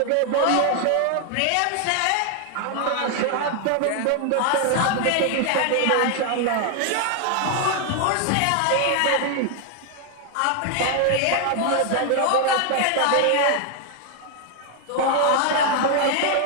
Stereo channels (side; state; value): both; different; correlation 0.01